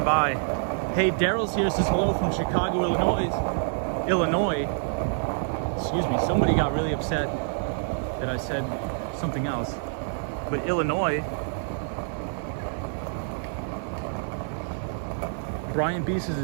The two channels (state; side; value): silent; left; 56 dB below the other